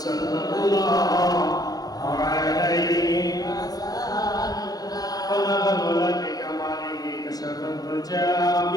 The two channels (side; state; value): right; late; 0.18 ms